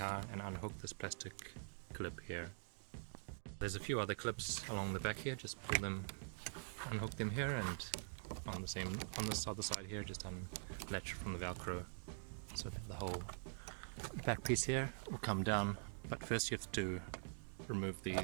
and unhook this plastic clip here. There's a few other clips along the back here, just pull them, unhook them here, and on this other side here just unlatch from the Velcro so that the whole back piece here will come down. But first you have to remove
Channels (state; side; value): silent; left; digital silence